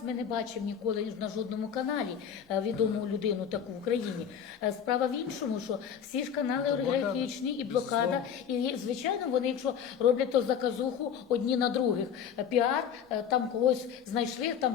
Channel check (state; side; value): quieter; right; 8.0 dB